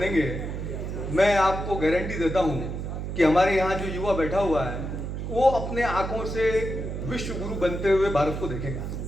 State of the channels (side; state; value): right; noise; hum, 5 dB below the sound